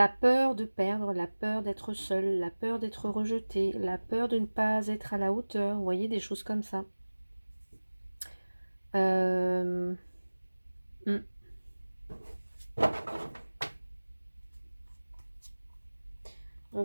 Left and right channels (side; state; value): both; inverted; correlation -1.00